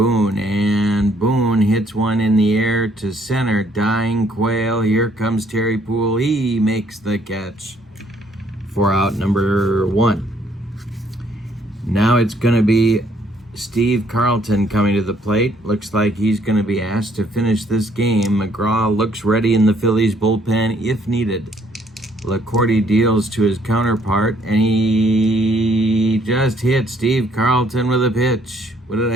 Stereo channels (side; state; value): both; normal; correlation 0.66